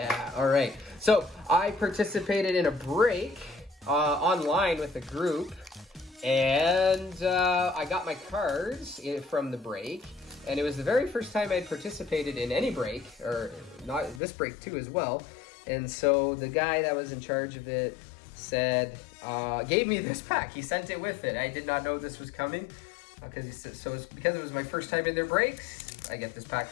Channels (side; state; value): right; drops out; at 14.2 s